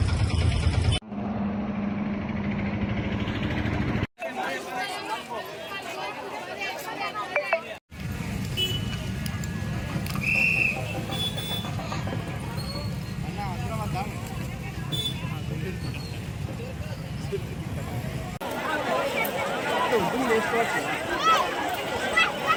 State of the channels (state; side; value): identical; both; correlation 1.00